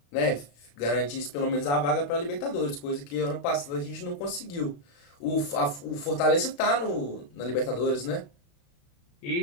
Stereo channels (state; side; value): late; right; 35 ms